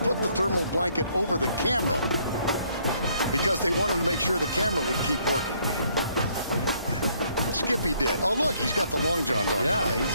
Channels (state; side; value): inverted; both; correlation -0.67